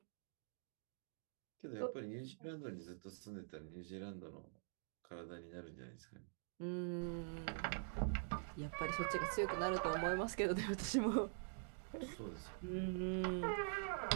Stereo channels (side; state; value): left; silent; digital silence